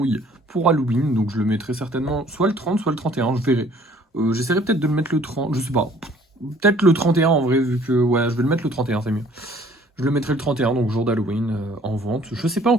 pour Halloween. Donc, je le mettrai certainement soit le 30, soit le 31. Je verrai. J'essaierai peut-être de le mettre le 30, je sais pas. Peut-être le 31 en vrai, vu que ouais, je vais le mettre le 31, c'est mieux. Je le mettrai le 31, donc jour d'Halloween, en vente. Je sais pas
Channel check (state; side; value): normal; both; correlation 0.56